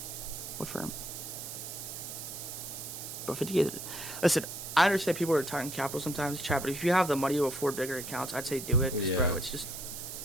What firm? Bro, 50K. Listen, I understand people are talking capital sometimes, chat, but if you have the money to afford bigger accounts, I'd say do it. Yeah. Bro, it's just,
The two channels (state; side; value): noise; right; hiss, 8 dB below the sound